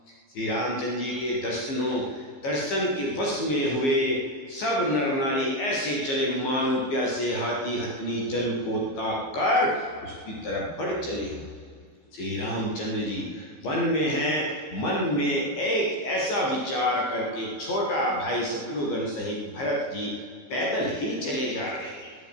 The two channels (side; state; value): right; late; 15 ms